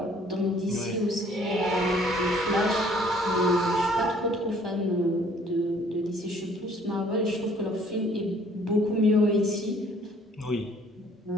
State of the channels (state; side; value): normal; both; correlation 0.58